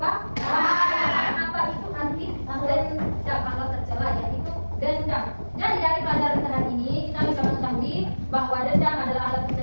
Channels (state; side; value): inverted; both; correlation -1.00